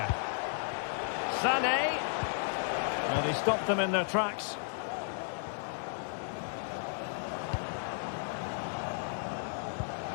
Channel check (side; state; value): right; silent; 55 dB below the other